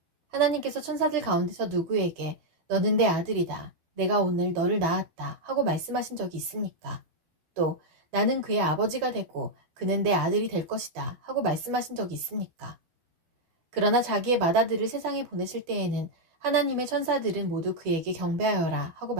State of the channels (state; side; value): late; left; 12 ms